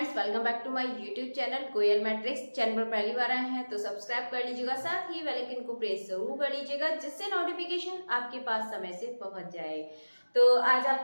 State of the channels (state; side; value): inverted; both; correlation -1.00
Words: welcome back to my YouTube channel Koyal matrix. Channel पर पहली बार आए हैं तो सब्सक्राइब कर लीजिएगा, साथ ही बेल आइकन को प्रेस जरूर कर लीजिएगा जिससे नोटिफिकेशन आपके पास समय से पहुंच जाए। तो आज